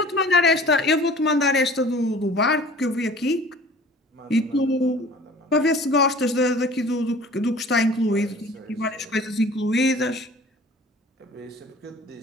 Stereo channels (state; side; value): normal; both; correlation 0.46